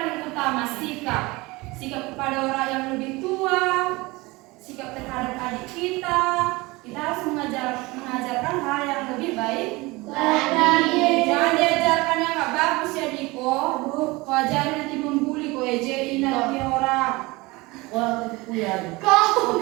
utama, sikap kepada orang yang lebih tua, sikap terhadap adik kita. Kita harus mengajarkan hal yang lebih baik Lagi. Jangan diajarkan yang nggak bagus ya Diko. Wajar nanti membuli kok ejein lagi orang. Kau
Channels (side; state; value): left; quieter; 22.8 dB